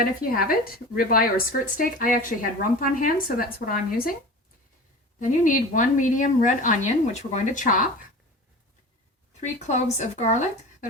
if you have it, ribeye or skirt steak. I actually had rump on hand, so that's what I'm using. Then you need 1 medium red onion, which we're going to chop, 3 cloves of garlic that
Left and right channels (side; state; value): both; normal; correlation 0.35